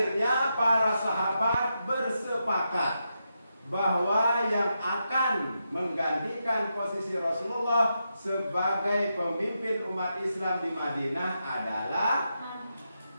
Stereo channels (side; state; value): both; inverted; correlation -0.85